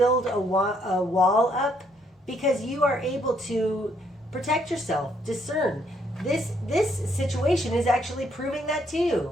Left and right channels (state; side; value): normal; both; correlation 0.70